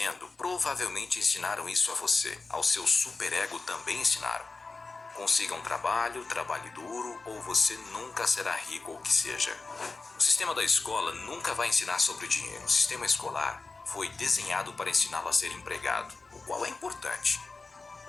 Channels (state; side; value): quieter; right; 3.9 dB